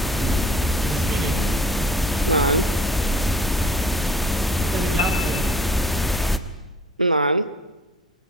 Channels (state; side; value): normal; both; correlation 0.49